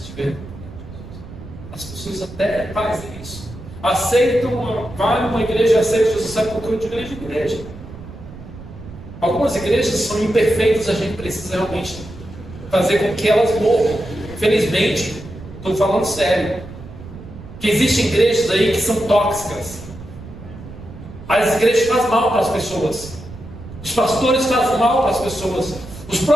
As pessoas até fazem isso. Aceitam, vai numa igreja, aceitam Jesus, sabe por que eu de igreja em igreja. Algumas igrejas são imperfeitas, a gente precisa realmente fazer com que elas morram. Infelizmente, estou falando sério, que existem igrejas aí que são tóxicas. As igrejas fazem mal para as pessoas, os pastores fazem mal para as pessoas, os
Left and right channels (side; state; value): right; noise; rumble, 15 dB below the sound